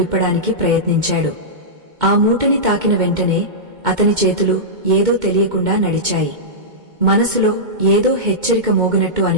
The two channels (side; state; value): left; late; 2.2 ms